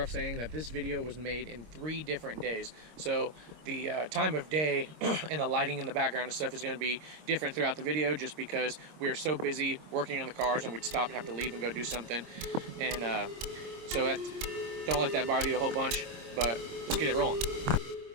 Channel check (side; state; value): left; late; 26 ms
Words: saying that this video was made in 3 different days. So the time of day and the lighting in the background and stuff is going to be different throughout the video, just because we are so busy working on the cars and we'd stop and have to leave and go do something. And so don't let that bother you a whole bunch, but let's get it rolling.